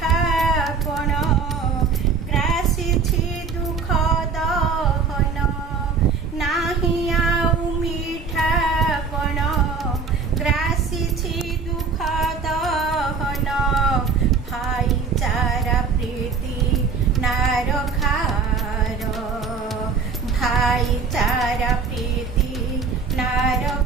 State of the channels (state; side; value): quieter; left; 5.1 dB